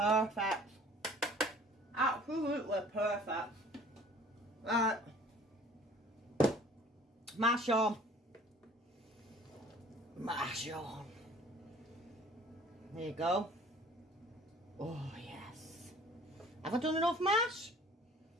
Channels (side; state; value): both; normal; correlation 0.51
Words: Absolutely perfect. Right. Mash on. Mash on. There you go. Oh, yes. Have I done enough mash?